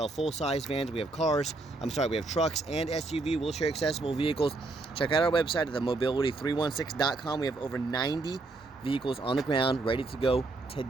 full-size vans, we have we have trucks and SUV wheelchair accessible vehicles. Check out our website at themobility316.com. We have over 90 vehicles on the ground ready to go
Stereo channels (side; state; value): left; quieter; 3.3 dB